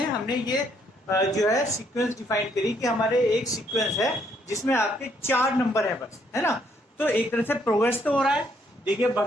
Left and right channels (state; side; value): normal; both; correlation 0.70